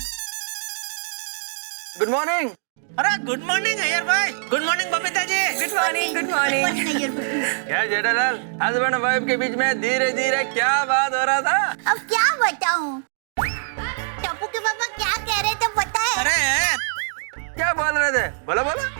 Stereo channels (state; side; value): silent; left; digital silence